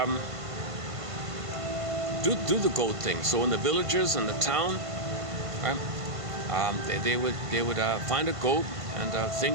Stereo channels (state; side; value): late; left; 1.5 ms